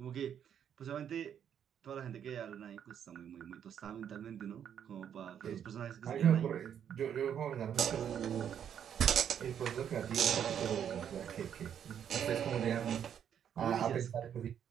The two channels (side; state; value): left; quieter; 8.9 dB